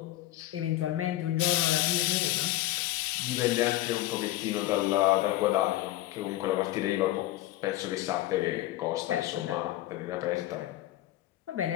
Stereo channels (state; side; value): quieter; right; 15.7 dB